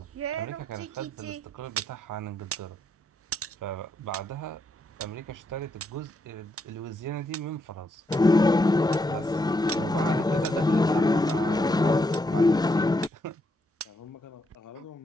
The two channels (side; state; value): both; normal; correlation 0.78